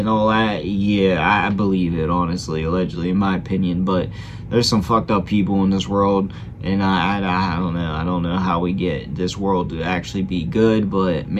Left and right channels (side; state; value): both; identical; correlation 1.00